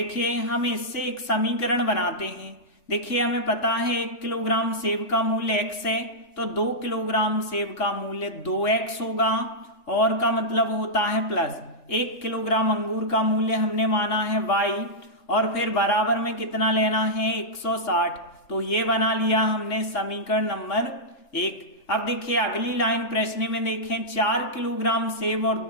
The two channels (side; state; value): right; late; 3.5 ms